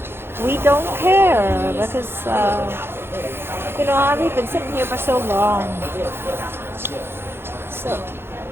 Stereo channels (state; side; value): late; left; 0.11 ms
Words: we don't care, because we've been sitting here for so long. So